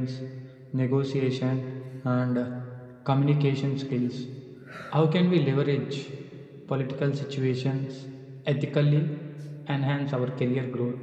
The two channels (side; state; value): both; identical; correlation 1.00